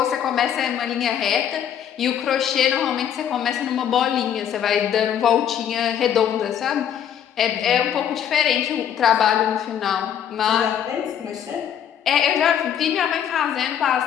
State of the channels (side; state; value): right; quieter; 9.3 dB